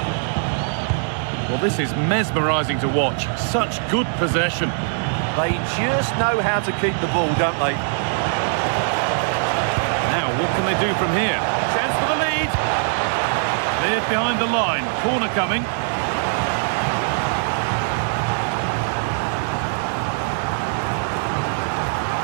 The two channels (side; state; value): left; silent; 65 dB below the other